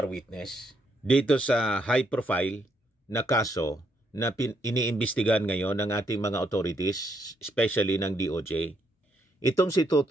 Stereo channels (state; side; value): normal; both; correlation 0.74